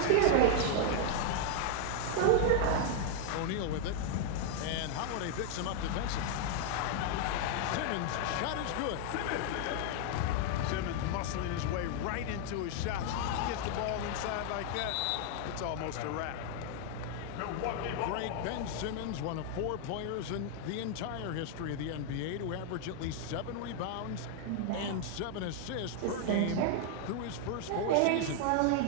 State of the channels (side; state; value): both; different; correlation 0.00